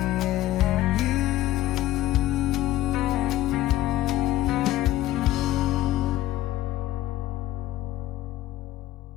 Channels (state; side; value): quieter; right; 14.8 dB